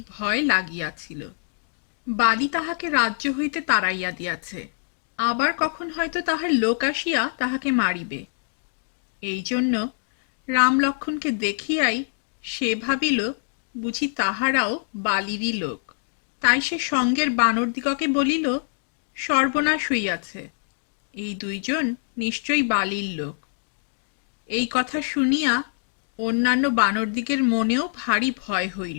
ভয় লাগিয়াছিল। বালি তাহাকে রাজ্য হইতে তাড়াইয়া দিয়াছে, আবার কখন হয়তো তাহার লোক আসিয়া তাহাকে মারিবে। এই জন্য রাম লক্ষ্মণকে দেখিয়াই সে ভাবিল বুঝি তাহারাও বালিরই লোক। তাই সে সঙ্গের বানরদিগকে বলিল, সর্বনাশ হইয়াছে, এই দুইজন নিশ্চয়ই বালির লোক। এই কথা শুনিয়া অন্যান্য বানরদিগের মনেও ভারী ভয়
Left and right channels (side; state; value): right; silent; digital silence